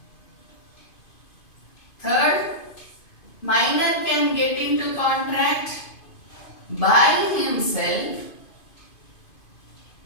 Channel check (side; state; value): right; late; 2.5 ms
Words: Third, minor can get into contract by himself